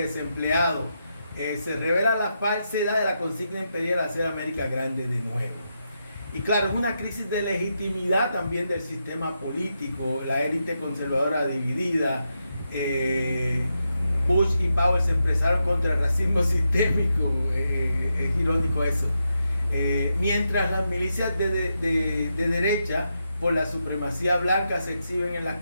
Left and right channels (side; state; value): both; inverted; correlation -0.85